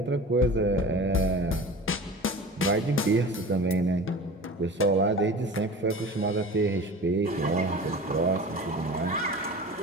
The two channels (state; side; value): normal; both; correlation 0.36